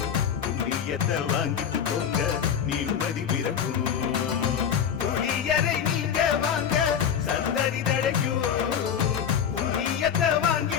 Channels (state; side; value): quieter; right; 8.1 dB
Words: புண்ணியத்தை வாங்கிட்டு போங்க நிம்மதி பிறக்கும் புளியரை நீங்க வாங்க சந்ததி தழைக்கும் புண்ணியத்தை